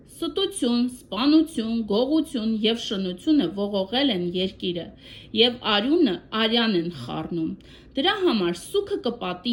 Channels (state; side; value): identical; both; correlation 1.00